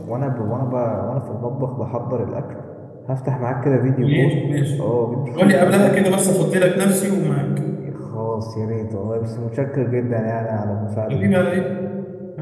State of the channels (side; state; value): both; identical; correlation 1.00